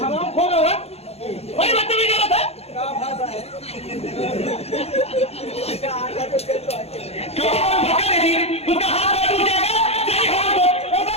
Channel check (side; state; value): right; late; 0.30 ms